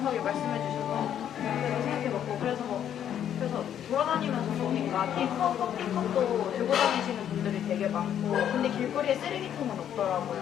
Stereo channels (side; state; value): right; quieter; 9.8 dB